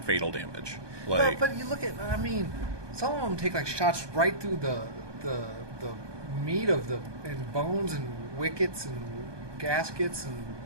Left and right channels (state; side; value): late; left; 1.2 ms